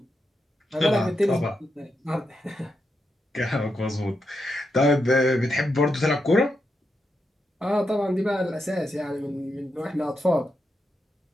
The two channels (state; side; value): normal; both; correlation 0.85